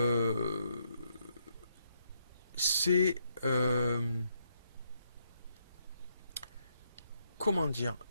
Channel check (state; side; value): inverted; both; correlation -0.76